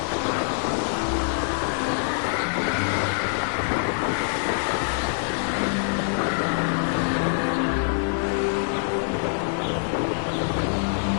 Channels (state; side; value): silent; right; digital silence